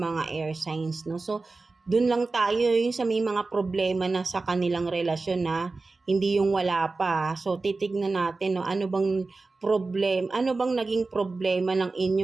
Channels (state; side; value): quieter; left; 3.7 dB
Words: air signs, no? So, dun lang tayo yung sa may mga problema na sa kanilang relasyon na hindi yung wala pa. So titignan natin no ano bang naging problema ng